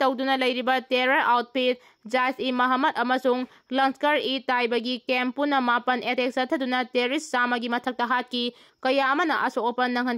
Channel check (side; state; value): both; identical; correlation 1.00